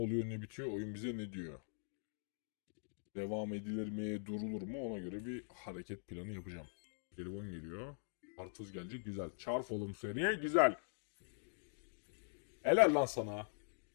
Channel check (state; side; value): silent; right; digital silence